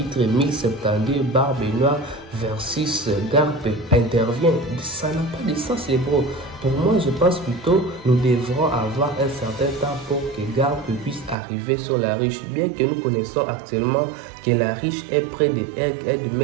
1072, Barbe Noire versus Garp intervient. Ça n'a pas de sens les bros. Pour moi, je pense plutôt nous devrons avoir un certain temps pour que Garp puisse arriver sur la riche. Bien que nous connaissons actuellement que la riche est près de Egghead,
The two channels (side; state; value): left; drops out; at 11.4 s